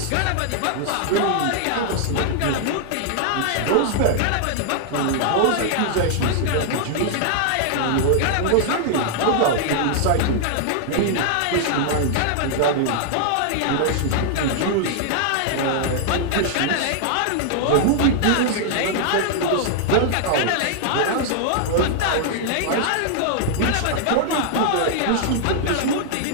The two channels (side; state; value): both; different; correlation -0.01